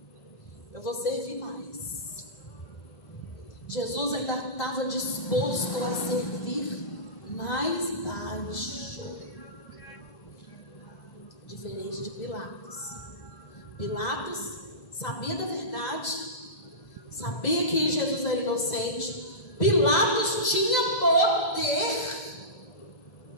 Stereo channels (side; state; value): right; late; 2.0 ms